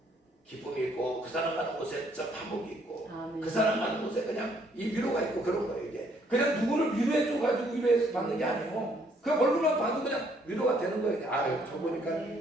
기쁨이 있고 그 사람 가는 곳에 화목이 있고 그 사람 가는 곳에 그냥 이 위로가 있고 그런 거예요. 이게 그냥 누구를 위로해 줘가지고 위로해서 받는 게 아니에요. 그 얼굴만 봐도 그냥 위로가 되는 거예요. 저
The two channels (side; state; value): both; normal; correlation 0.67